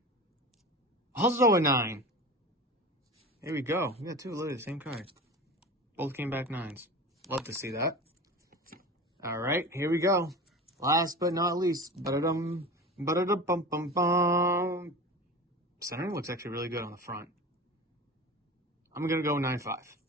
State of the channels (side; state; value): both; normal; correlation 0.32